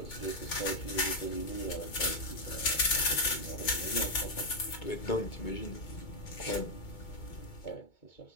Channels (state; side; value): late; right; 2.2 ms